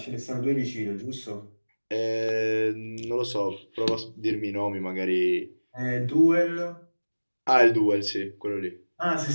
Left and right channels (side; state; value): both; inverted; correlation -1.00